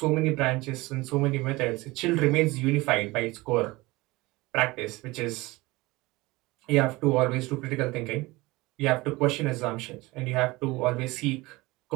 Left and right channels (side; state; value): left; quieter; 21.7 dB